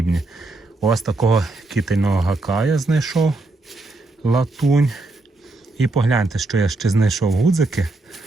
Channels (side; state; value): left; quieter; 3.0 dB